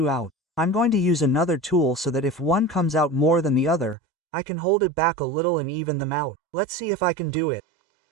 out. I'm going to use another tool so that if one comes out more than the other, I can hold it back a little and even them out. Let's see if I can do it.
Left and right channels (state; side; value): drops out; left; at 4.0 s